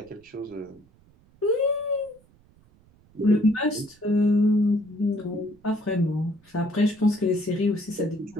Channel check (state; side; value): noise; right; rumble, 30 dB below the sound